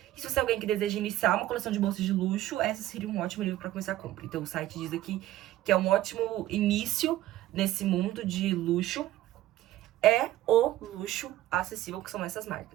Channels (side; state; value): left; quieter; 14.7 dB